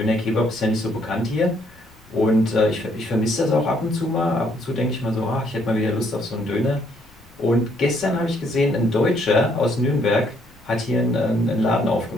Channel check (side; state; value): left; noise; rumble, 28 dB below the sound